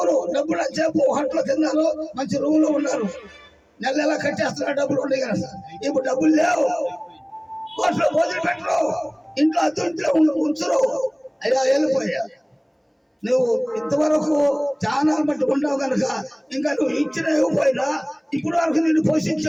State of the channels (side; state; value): both; identical; correlation 1.00